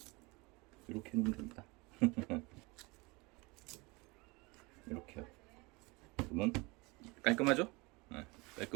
이렇게 놓으면 됩니다. 이렇게요. 그러면 깔끔하죠? 네,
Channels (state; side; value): quieter; left; 25.7 dB